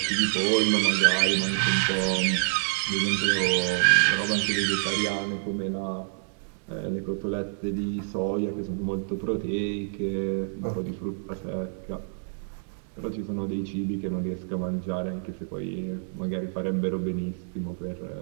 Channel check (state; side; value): silent; left; digital silence